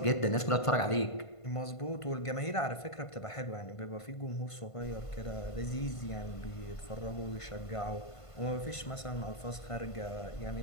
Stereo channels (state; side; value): late; right; 1.5 ms